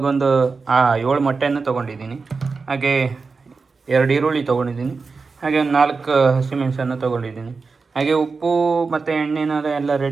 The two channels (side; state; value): left; quieter; 4.5 dB